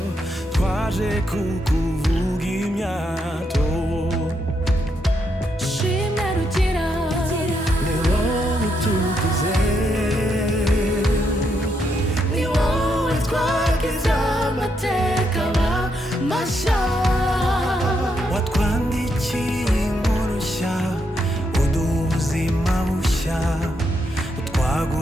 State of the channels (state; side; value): normal; both; correlation 0.79